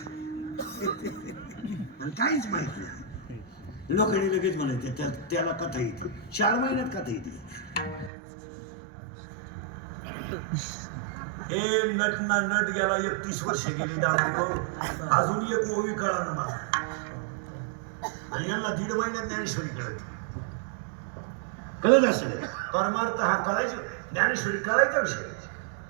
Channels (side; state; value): left; drops out; at 8.1 s